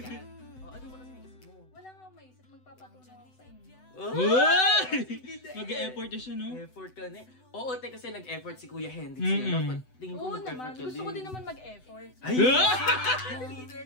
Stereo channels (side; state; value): right; late; 7.9 ms